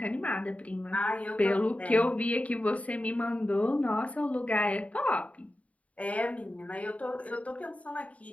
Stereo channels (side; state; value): right; late; 0.067 ms